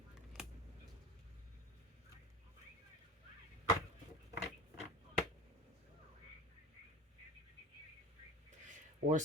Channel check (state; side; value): normal; both; correlation 0.35